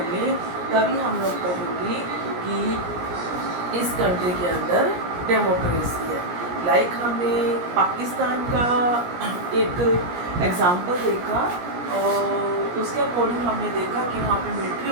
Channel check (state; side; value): late; left; 17 ms